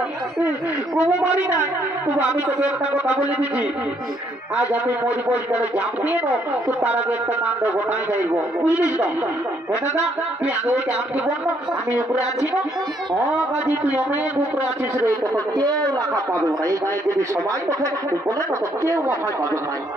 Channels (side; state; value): both; normal; correlation 0.69